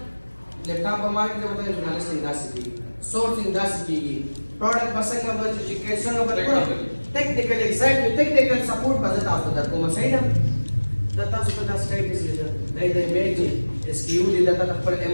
لیپټاپ په مارکیټ کې وته ژورنالیسټینګ داسې کېږي سورټینګ داسې کېږي پروډکټ به څنګه به چې څنګه به ټیکنیکل ایگزیکټیو ټیکنیکل سپورټ به زه تاسو ته درکوم صحیح ده دا تاسو ته دا سټایټس دی دا د ایمیج اس کیو دی دا خپل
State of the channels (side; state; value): both; inverted; correlation -1.00